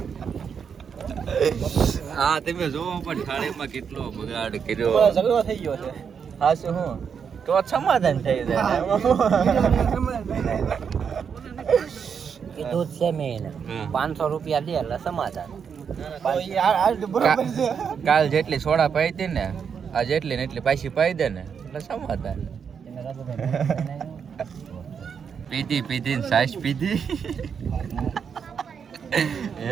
હા તમે જોવો પણ થાળીમાં કેટલો બગાડ કર્યો, ઝઘડો થઈ ગયો છે. હા શું હું તો સમાધાન થઈ જાય. કીધું છે મેં 500 રૂપિયા દે એટલે સમાધાન. કાલ જેટલી સોડા પાઈ હતી ને આ જેટલી ને એટલી પાછી પાઈ દે ને એટલે સમાધાન. પીધી ને સાસ પીધી એ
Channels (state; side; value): quieter; left; 6.9 dB